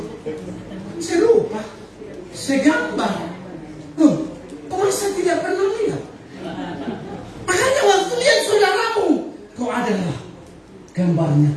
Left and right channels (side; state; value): both; identical; correlation 1.00